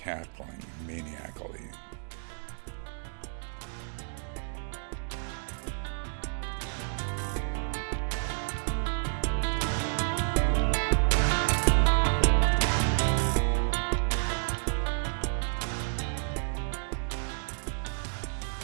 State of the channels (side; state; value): left; silent; digital silence